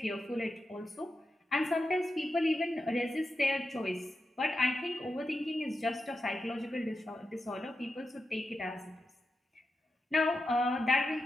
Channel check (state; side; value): normal; both; correlation 0.89